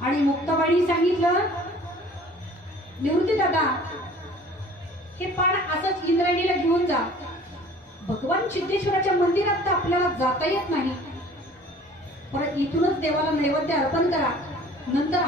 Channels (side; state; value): both; normal; correlation 0.49